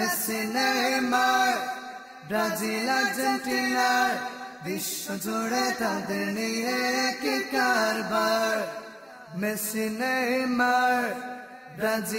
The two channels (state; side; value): identical; both; correlation 1.00